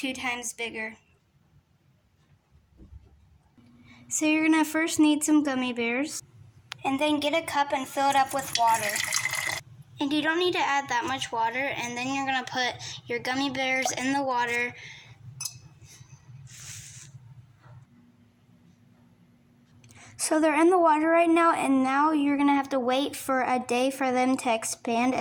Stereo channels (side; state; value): both; identical; correlation 1.00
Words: times bigger. So you're going to first need some gummy bears, and then get a cup and fill it up with water. And you don't need to add that much water, and then you're going to put your gummy bears in the water. So they're in the water right now, and now you're going to have to wait for a day for them to expand,